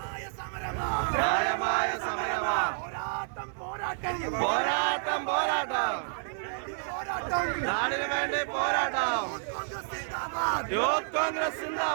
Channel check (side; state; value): left; silent; 58 dB below the other